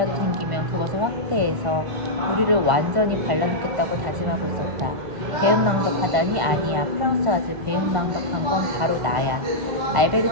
생기면 그것을 확대해서 우리를 완전히 갈라놓겠다고 다짐하고 있었다. 배은망덕하다니 아니야. 프랑스 아주 배은망덕한 건 바로 나야.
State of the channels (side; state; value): left; late; 1.5 ms